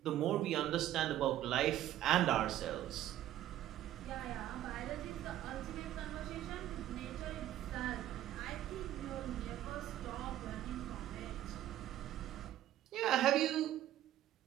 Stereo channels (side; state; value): left; quieter; 12.8 dB